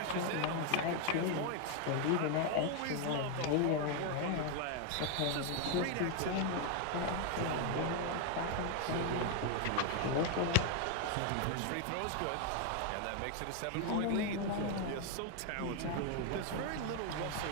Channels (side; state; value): both; different; correlation 0.01